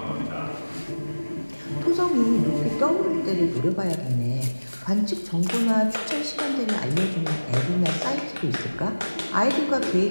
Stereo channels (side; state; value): both; inverted; correlation -1.00